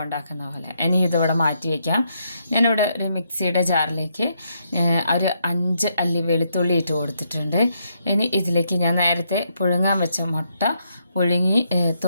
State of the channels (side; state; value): both; inverted; correlation -0.77